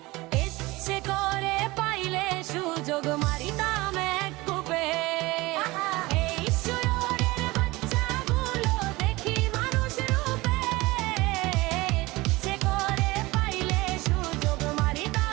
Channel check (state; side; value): quieter; left; 21.2 dB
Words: ইচ্ছে করে পাইলে সুযোগ মারিতাম এক কূপে। এই শুয়োরের বাচ্চাগুলো দেখি মানুষ রূপে, ইচ্ছে করে পাইলে সুযোগ